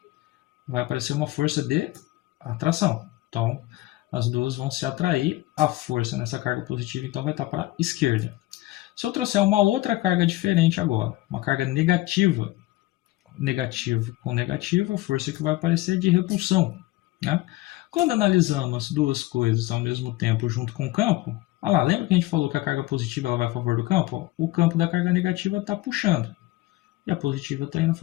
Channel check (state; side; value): quieter; right; 18.1 dB